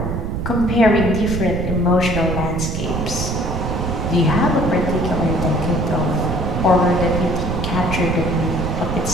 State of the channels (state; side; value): noise; right; rumble, 3 dB below the sound